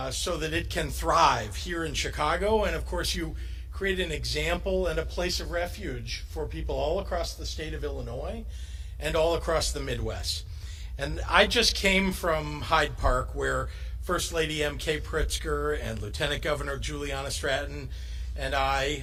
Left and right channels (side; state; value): both; identical; correlation 1.00